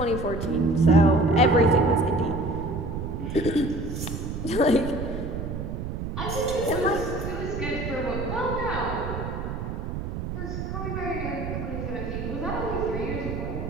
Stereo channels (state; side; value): noise; right; rumble, 5 dB below the sound